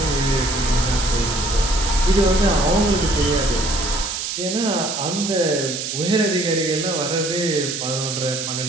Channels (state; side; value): noise; right; hiss, 4 dB below the sound